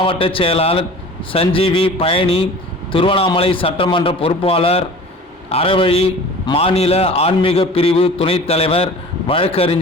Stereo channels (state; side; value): normal; both; correlation 0.42